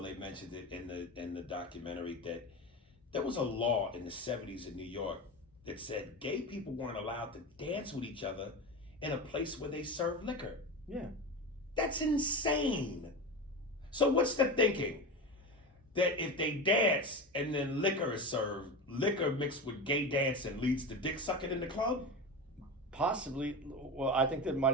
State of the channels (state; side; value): normal; both; correlation 0.24